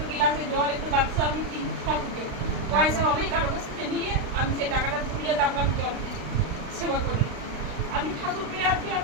গ্লাসে জল, একটু বাক্স আমি দিই ঠাকুরকে। পয়সা আমি কারো কাছ থেকে নিয়ে আমি সেই টাকাটা তুলে তারপর আমি জল দিই, সেবা করি। আমি ঠাকুরকে আজকে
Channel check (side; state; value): left; late; 35 ms